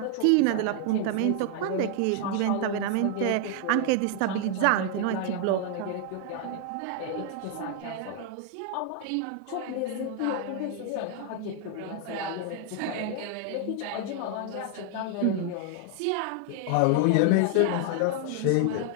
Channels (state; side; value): different; both; correlation 0.00